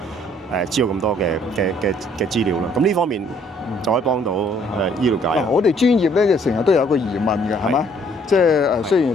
知道咁多嘅資料啦。咁呢方面就可以幫到醫療界。我哋專業咧就成日都有一個疑問嘅，係嘛？即係雖然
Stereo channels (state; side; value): normal; both; correlation 0.62